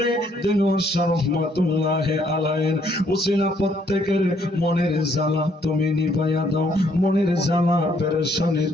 দিনওয়ার রহমাতুল্লাহ আলাইহি উসিলা প্রত্যেকের মনের জ্বালা তুমি নিভাইয়া দাও মনের জ্বালা পেরেশানি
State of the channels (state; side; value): normal; both; correlation 0.68